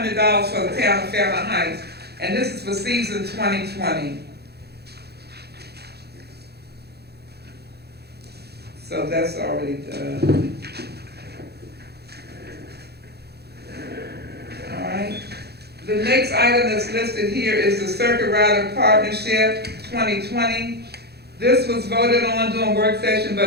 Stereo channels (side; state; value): left; late; 0.47 ms